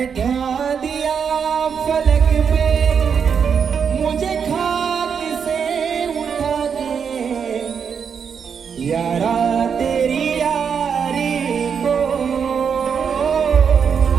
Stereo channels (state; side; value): quieter; left; 6.8 dB